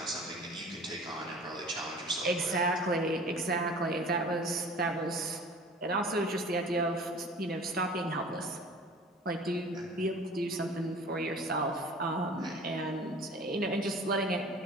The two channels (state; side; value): normal; both; correlation 0.43